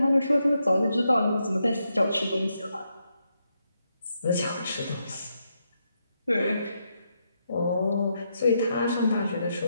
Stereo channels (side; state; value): both; inverted; correlation -0.82